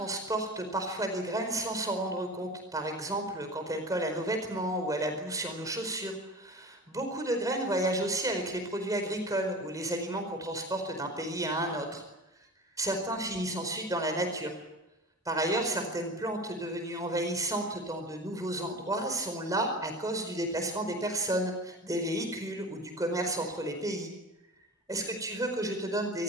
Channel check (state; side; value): normal; both; correlation 0.34